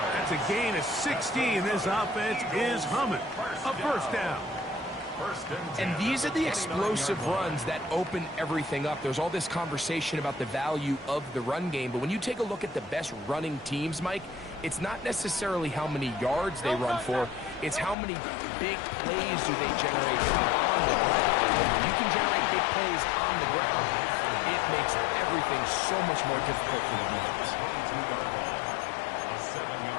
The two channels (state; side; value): drops out; right; at 17.9 s